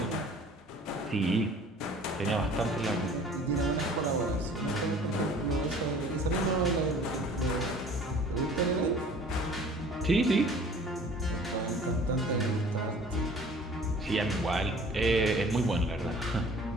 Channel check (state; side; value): normal; both; correlation 0.49